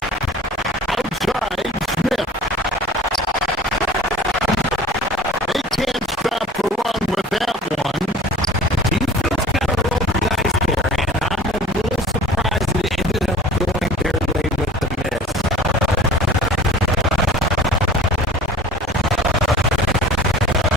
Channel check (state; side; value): normal; both; correlation 0.43